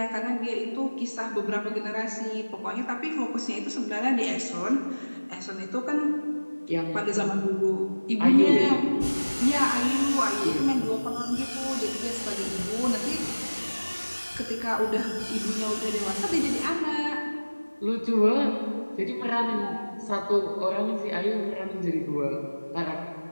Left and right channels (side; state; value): both; inverted; correlation -1.00